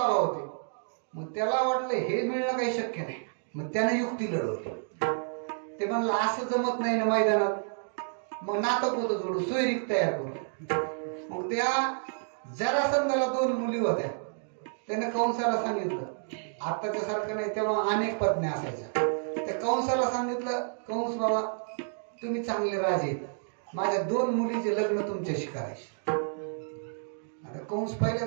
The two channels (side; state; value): left; silent; digital silence